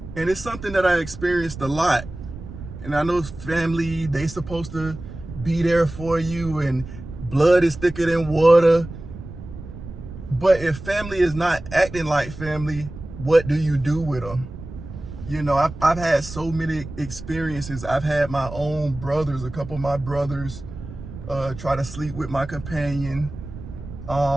And it's something that I experienced a lot. And I know family, they supposed to be there for you and blood is thicker than water. But if family is not acting like family, what do you do with them? You know, I've had so many experiences. I've had my own brothers, a couple of my brothers try to sleep with my companion.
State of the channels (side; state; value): right; noise; rumble, 12 dB below the sound